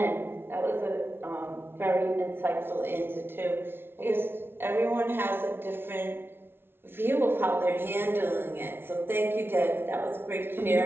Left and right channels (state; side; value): late; left; 0.11 ms